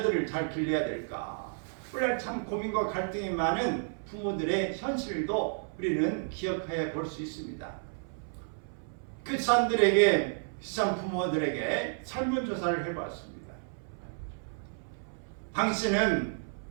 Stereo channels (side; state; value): left; silent; 57 dB below the other